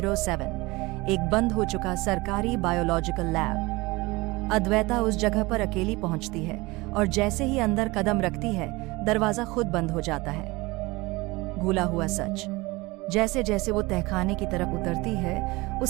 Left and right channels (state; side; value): quieter; left; 22.7 dB